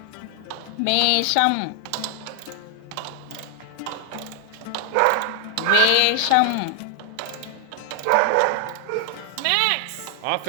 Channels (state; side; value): different; both; correlation 0.00